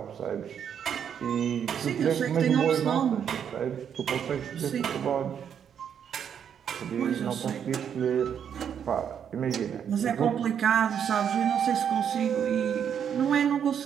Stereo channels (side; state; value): left; quieter; 8.3 dB